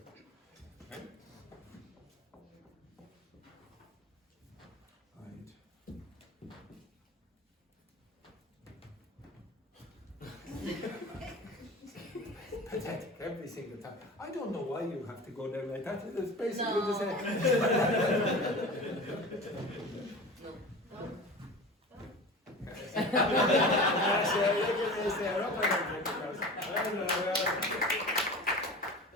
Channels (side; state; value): both; normal; correlation 0.34